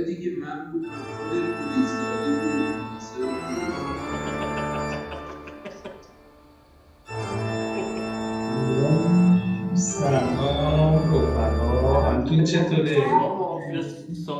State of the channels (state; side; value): identical; both; correlation 1.00